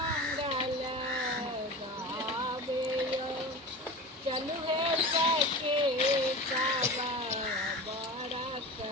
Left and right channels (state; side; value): normal; both; correlation 0.31